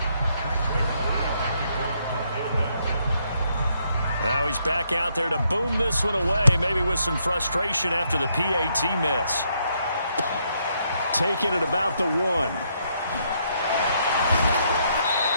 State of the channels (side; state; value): both; inverted; correlation -0.74